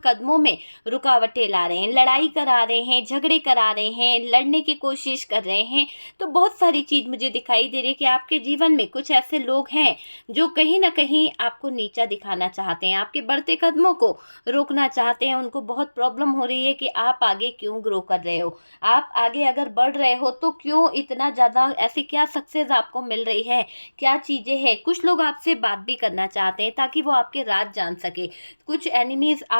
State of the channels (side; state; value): both; inverted; correlation -1.00